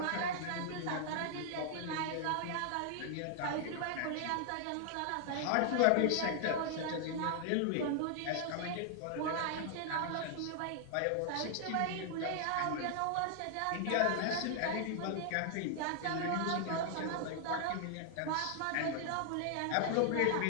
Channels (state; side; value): different; both; correlation 0.00